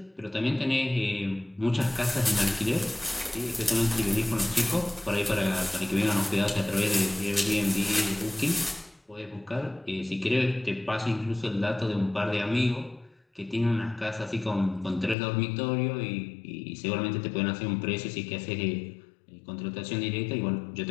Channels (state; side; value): drops out; right; at 15.2 s